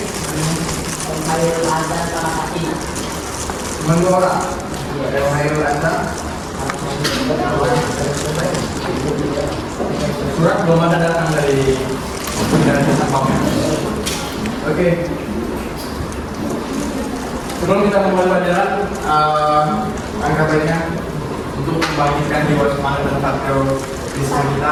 Khairul Azhar sama Fatina. Cuma 2 orang. Ada Khairul Azhar. Surat belum ada datang dari jasa pamnya. Oke. Sebelum kita memulai pelajaran, angka baiknya untuk membangkitkan jiwa semangat dan patriotisme kita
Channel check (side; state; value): both; identical; correlation 1.00